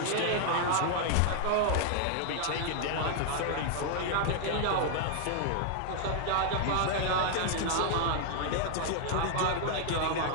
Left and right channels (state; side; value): different; both; correlation 0.00